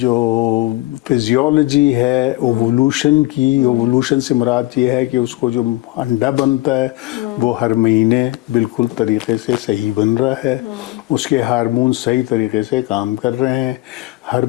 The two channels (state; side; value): quieter; right; 19.1 dB